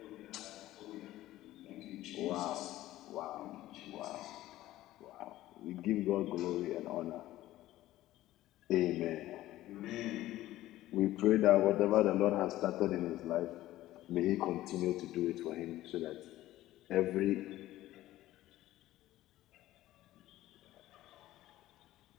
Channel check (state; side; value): quieter; right; 15.3 dB